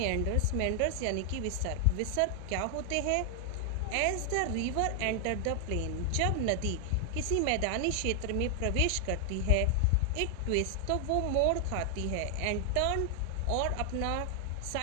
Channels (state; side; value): different; both; correlation 0.00